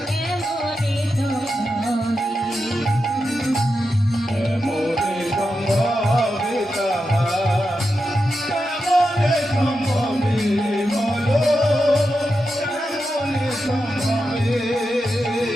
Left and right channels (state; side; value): normal; both; correlation 0.88